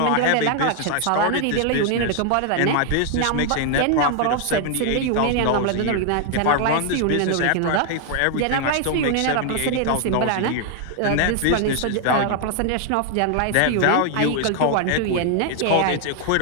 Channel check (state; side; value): different; both; correlation 0.00